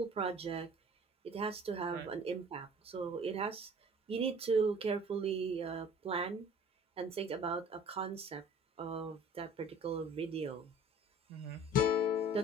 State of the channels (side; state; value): both; normal; correlation 0.48